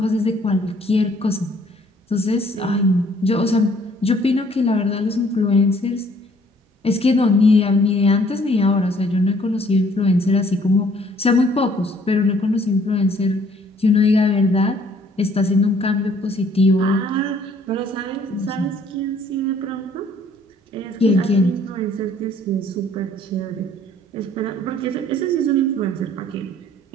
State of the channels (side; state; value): both; normal; correlation 0.60